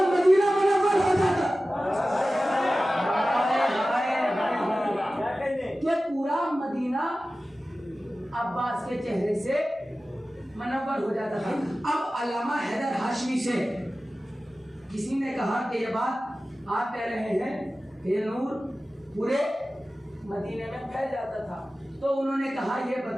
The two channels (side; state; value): both; normal; correlation 0.95